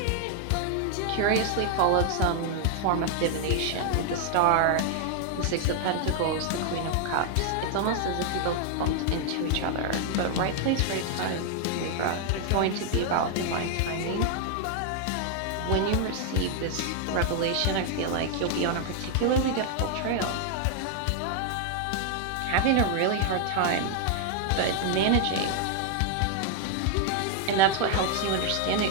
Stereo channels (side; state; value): both; different; correlation 0.00